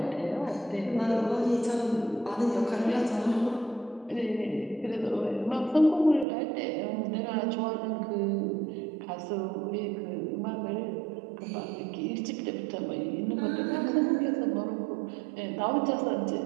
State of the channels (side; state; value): left; drops out; at 6.2 s